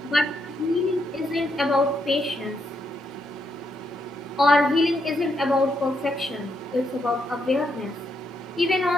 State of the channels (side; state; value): both; normal; correlation 0.79